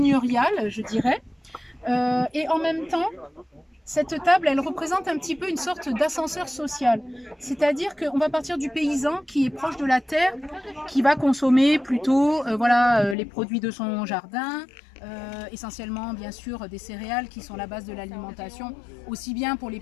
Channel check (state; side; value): drops out; right; at 13.2 s